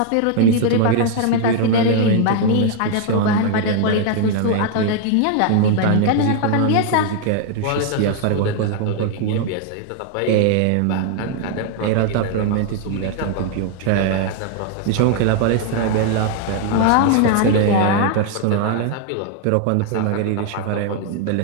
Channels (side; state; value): both; different; correlation 0.00